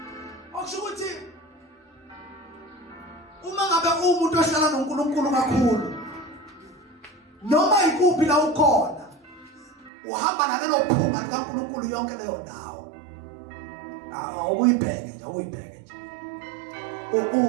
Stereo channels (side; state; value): left; drops out; at 9.9 s